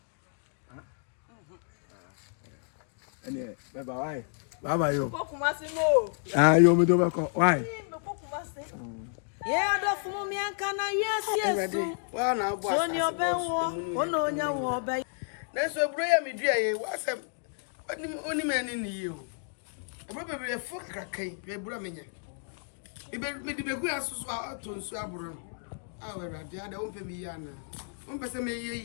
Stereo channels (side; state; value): right; silent; digital silence